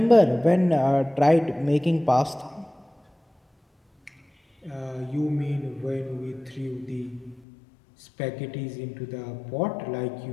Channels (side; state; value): right; drops out; at 7.5 s